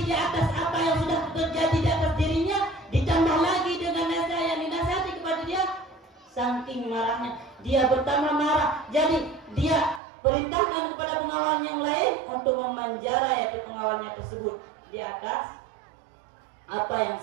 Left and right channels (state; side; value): drops out; left; at 10.0 s